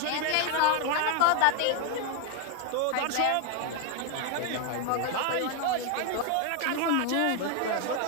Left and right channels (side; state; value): both; different; correlation 0.01